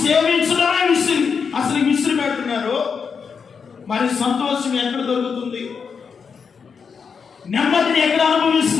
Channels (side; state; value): right; quieter; 6.0 dB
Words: సేవించడమే విసిరి పెడుతున్నారు. మరి సంతోషం ఎక్కడ దొరుకుతుంది? నెమ్మదిని ఎక్కడ